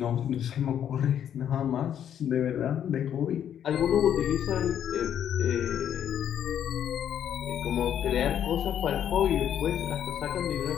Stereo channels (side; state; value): right; quieter; 9.6 dB